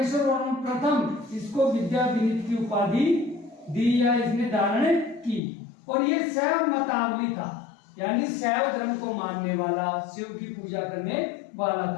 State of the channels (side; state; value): right; drops out; at 5.4 s